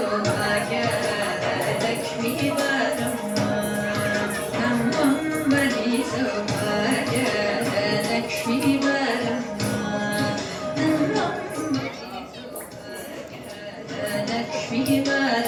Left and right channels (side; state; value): both; identical; correlation 1.00